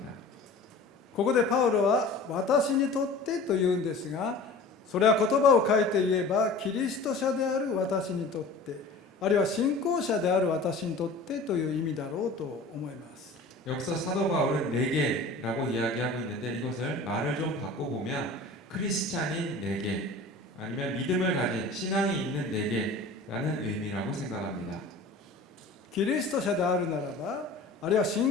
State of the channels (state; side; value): quieter; right; 3.1 dB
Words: ここでパウロは私にとってと言うんですが、それは言葉を変えて言えばキリスト者である私にとって、あるいは信仰者である私にとってという意味だろうと思います。 여기서 사도 바울은 내게라고 이야기하고 있는데 이것을 말을 좀 바꿔보면 크리스찬인 내게 아니면 믿음을 가진 신앙이 있는 내게라는 의미라고 생각합니다. キリスト者であるならば、あるいは